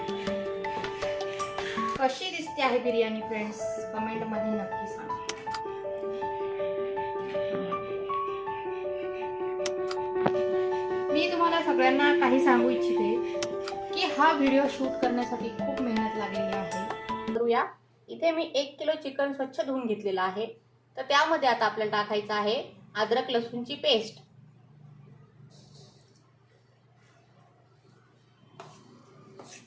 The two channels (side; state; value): both; identical; correlation 1.00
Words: कशी दिसते आहे बिर्याणी फ्रेंड्स, कमेंट मध्ये नक्की सांगा। मी तुम्हाला सगळ्यांना काही सांगू इच्छिते की हा व्हिडिओ शूट करण्यासाठी खूप मेहनत लागलेली आहे। करूया, इथे मी 1 किलो चिकन स्वच्छ धुवून घेतलेला आहे। तर त्यामध्ये आता आपल्याला टाकायचं आहे अद्रक लसूणची पेस्ट,